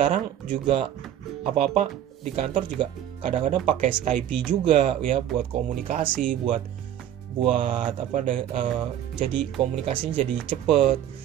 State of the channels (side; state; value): left; quieter; 10.9 dB